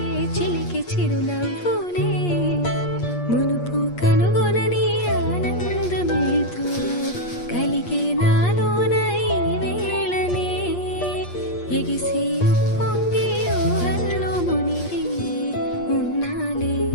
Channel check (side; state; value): right; late; 8.4 ms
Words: చిలికి చిరునవ్వులే మునుపు కనుగొనని ఆనందమేతో కలిగే నాలోన ఈ వేళనే ఎగిసి ఉప్పొంగి ఊహల్లో మునిగి ఉన్నాలే